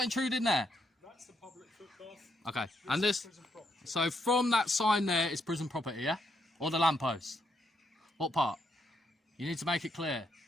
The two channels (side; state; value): both; normal; correlation 0.77